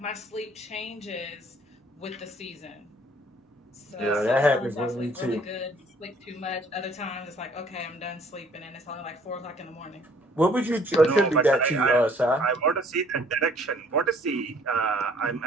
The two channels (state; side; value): normal; both; correlation 0.59